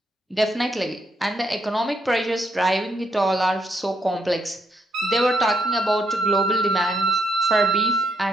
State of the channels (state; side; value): normal; both; correlation 0.77